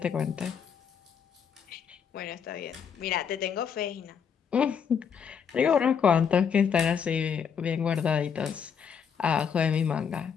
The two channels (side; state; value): right; quieter; 7.1 dB